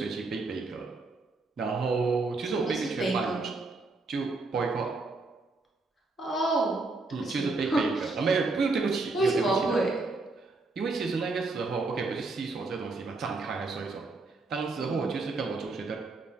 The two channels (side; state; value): left; quieter; 3.5 dB